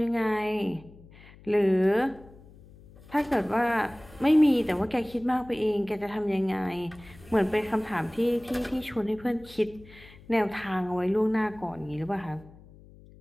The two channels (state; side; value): noise; left; hum, 22 dB below the sound